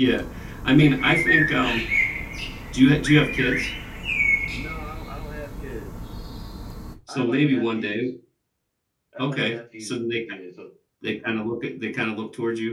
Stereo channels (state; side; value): identical; both; correlation 1.00